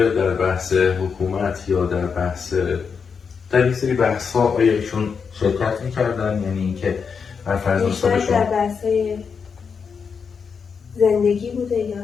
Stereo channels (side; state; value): right; quieter; 6.0 dB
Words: در بحث حکومت یا در یک سری بحث ها آیا ایشون شرکت میکردن؟ یعنی اینکه هر فرزند شما در بحث های زندگی بوده